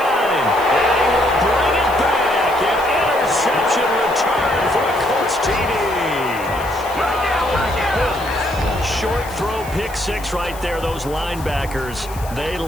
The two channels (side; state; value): left; noise; hiss, 18 dB below the sound